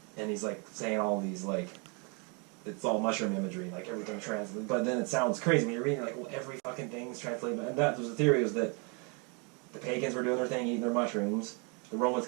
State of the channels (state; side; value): quieter; left; 34.1 dB